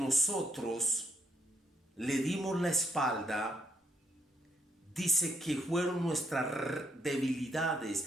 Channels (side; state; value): both; normal; correlation 0.74